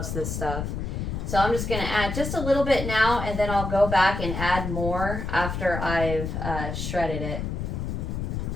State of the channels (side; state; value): left; noise; rumble, 4 dB below the sound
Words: this stuff. So I'm just going to add just a little bit now, and then I'll go back and add more after I've shredded it.